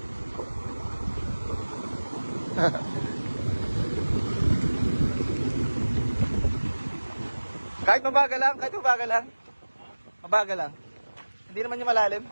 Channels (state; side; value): inverted; both; correlation -1.00